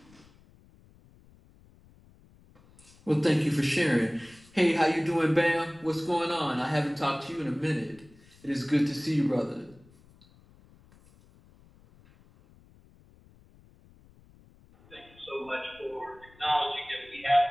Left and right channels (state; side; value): noise; left; rumble, 27 dB below the sound